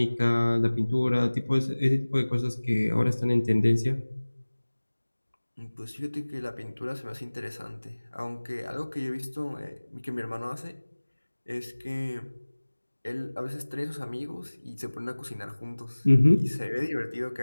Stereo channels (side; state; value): both; inverted; correlation -1.00